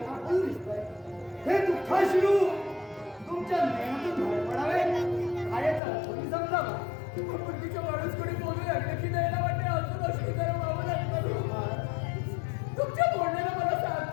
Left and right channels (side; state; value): right; drops out; at 5.8 s